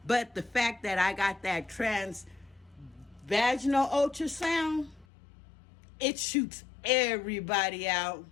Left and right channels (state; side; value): drops out; right; at 5.1 s